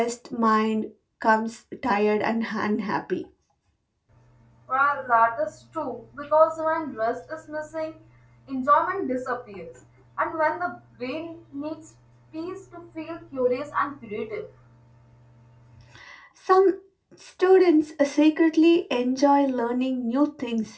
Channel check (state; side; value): identical; both; correlation 1.00